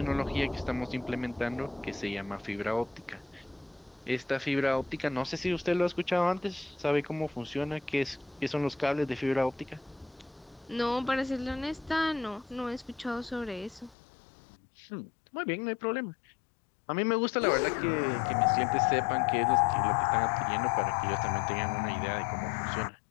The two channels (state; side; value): drops out; right; at 14.0 s